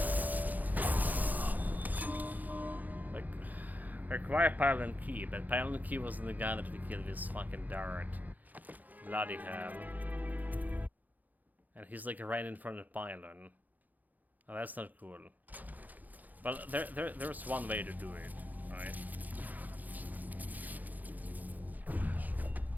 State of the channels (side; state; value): left; late; 0.082 ms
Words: Acquire pylon key, but pylon key wasn't the guy that we killed with fucking dart. Bloody hell. And he's like right in front of the pylon. Oh, that's not cool. But there's one way to do it, right?